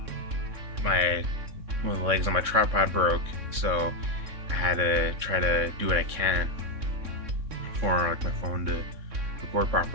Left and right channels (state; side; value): late; left; 3.7 ms